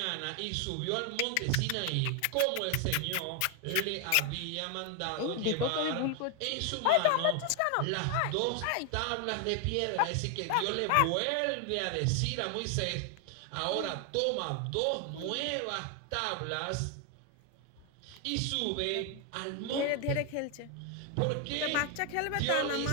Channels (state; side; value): different; both; correlation 0.01